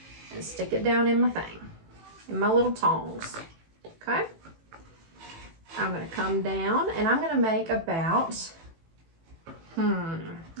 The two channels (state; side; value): late; left; 18 ms